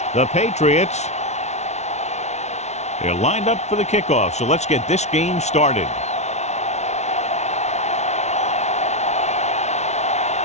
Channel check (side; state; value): right; late; 0.32 ms